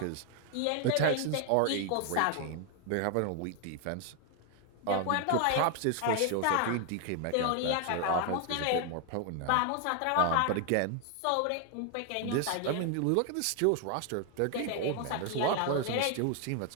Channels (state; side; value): different; both; correlation 0.00